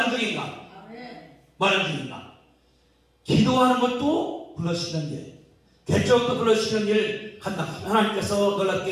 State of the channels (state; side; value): identical; both; correlation 1.00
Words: 중인가? 뭐 하는 중인가? 기도하는 것도 불러시키는 일, 개척도 불러시키는 일 한다. 하나님께서